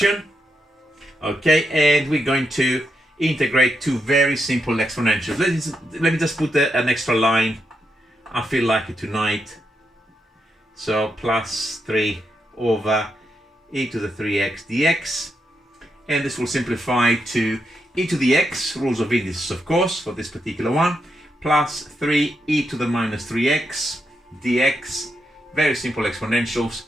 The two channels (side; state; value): both; normal; correlation 0.83